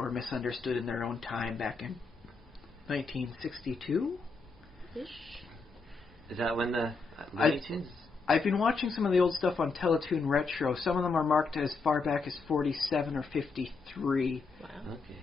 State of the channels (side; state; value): right; quieter; 4.3 dB